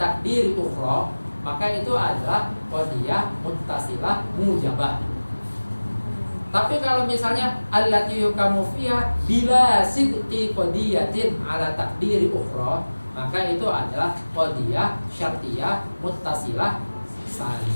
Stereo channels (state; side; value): inverted; both; correlation -1.00